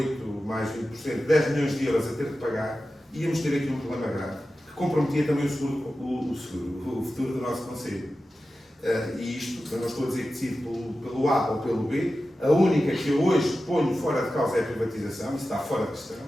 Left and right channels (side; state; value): both; normal; correlation 0.93